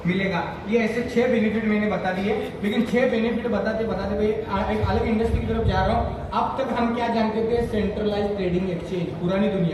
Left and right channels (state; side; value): identical; both; correlation 1.00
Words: मिलेगा। ये ऐसे 6 बेनिफिट मैंने बता दिए। लेकिन 6 बेनिफिट बताते भाई एक अलग इंडस्ट्री की तरफ जा रहा हूँ। अब तक हम क्या जानते थे? सेंट्रलाइज ट्रेडिंग एक्सचेंज, पुरानी